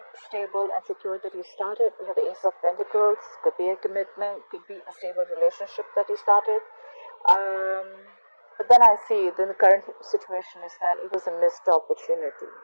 stable and secure that you started. You have the Ace of Pentacles. Could be a commitment, could be a stable relationship that you started. But then I see the current situation is that it was a missed opportunity,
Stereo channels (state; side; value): inverted; both; correlation -1.00